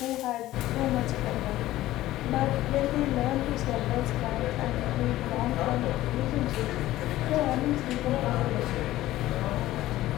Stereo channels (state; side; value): quieter; right; 15.5 dB